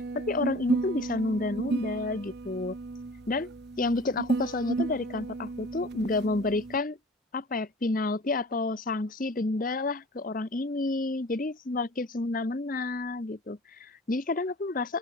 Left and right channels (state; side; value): normal; both; correlation 0.43